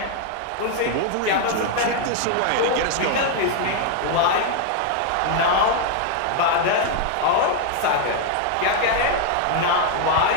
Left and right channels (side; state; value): both; different; correlation 0.00